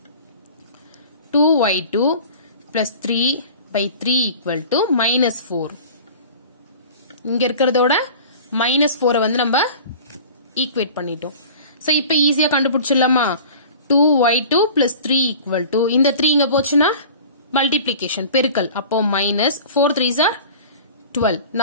2y2 plus 3 by 3 equal to minus 4 இங்க இருக்கிறதோட minus 4 வந்து நம்ம ஈக்குவேட் பண்ணிட்டோம் சோ இப்போ ஈஸியா கண்டுபிடிச்சிடலாமா 2y2 plus 3 equal to இந்த 3 இங்க போச்சுன்னா மல்டிப்ளிகேஷன் பெருக்கல் அப்போ minus 4 3s are 12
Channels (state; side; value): inverted; both; correlation -0.41